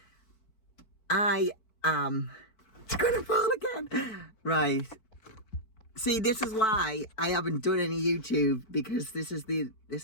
I am gonna fall again. Right. See, this is why I haven't done any YouTube, because this is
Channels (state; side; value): late; right; 4.6 ms